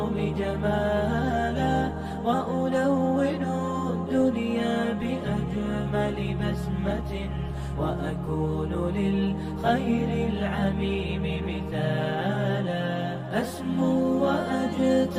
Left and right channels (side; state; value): both; identical; correlation 1.00